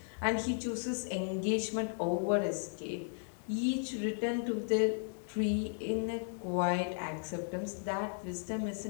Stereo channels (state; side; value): silent; right; digital silence